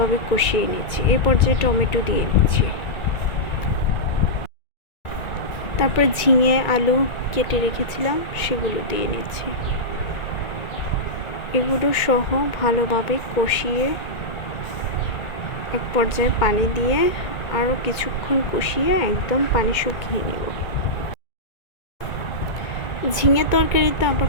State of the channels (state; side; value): late; right; 1.9 ms